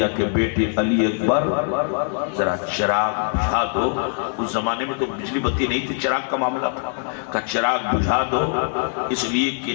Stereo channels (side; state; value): right; silent; 56 dB below the other